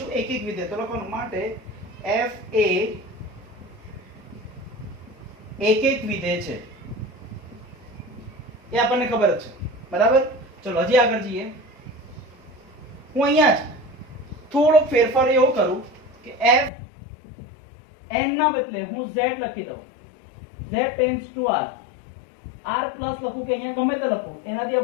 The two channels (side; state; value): right; drops out; at 16.7 s